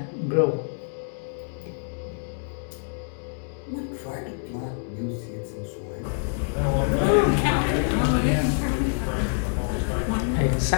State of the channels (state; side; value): silent; right; digital silence